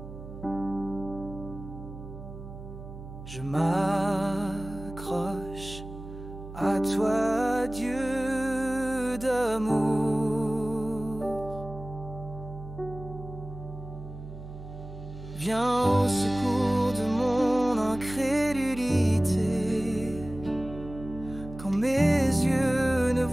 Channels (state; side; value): noise; right; hum, 12 dB below the sound